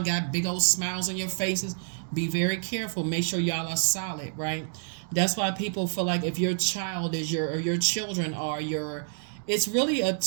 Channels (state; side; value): silent; left; digital silence